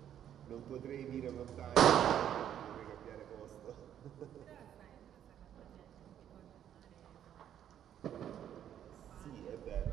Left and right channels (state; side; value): quieter; left; 10.2 dB